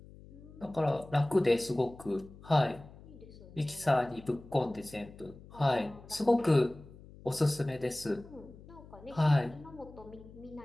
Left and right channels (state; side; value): noise; left; hum, 19 dB below the sound